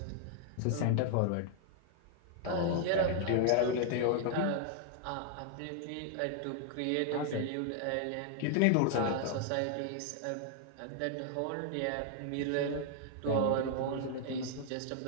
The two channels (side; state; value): both; different; correlation 0.00